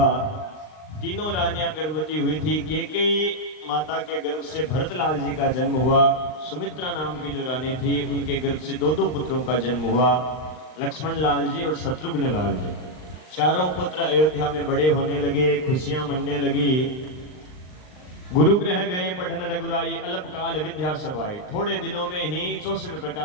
तीनों रानियां गर्भवती हुई थी। केकई माता के गर्भ से भरतलाल जी का जन्म हुआ। सुमित्रा नाम की जो रानी थी उनके गर्भ से दो पुत्रों का जन्म हुआ, लक्ष्मण लाल जी और शत्रुघ्न लाल जी। चारों पुत्र अयोध्या में बड़े होने लगे, खुशियां मनने लगी। गुरु ग्रह गए पठन रघुराई, अल्पकाल विद्या सब आए। थोड़े दिनों में ही 64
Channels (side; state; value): right; late; 39 ms